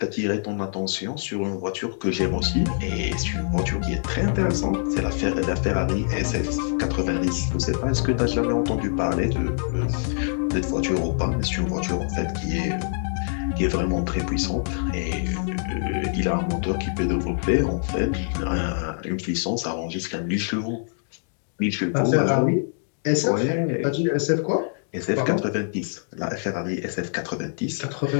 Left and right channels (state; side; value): silent; right; digital silence